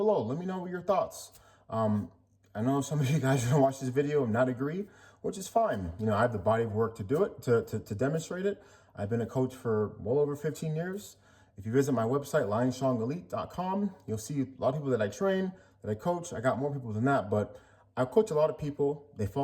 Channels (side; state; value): both; identical; correlation 1.00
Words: Let me know what your thoughts. I know some of you guys are gonna watch this video and not agree, which is fine. I have the body of work to do it, to demonstrate it. I've been a coach for well over 15 years. If you visit my website, lionstrongelite.com, you'll see a lot of people that I train, that I coach. I got more people than that, but I coach a lot of people. They